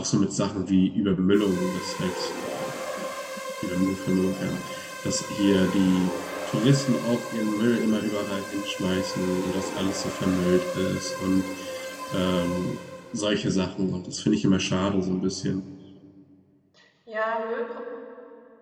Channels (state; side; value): identical; both; correlation 1.00